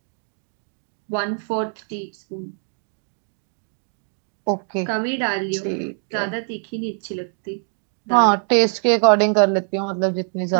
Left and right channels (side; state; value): left; silent; 60 dB below the other